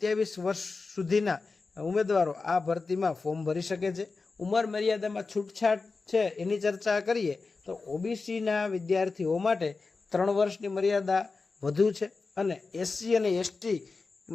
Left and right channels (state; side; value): quieter; right; 4.1 dB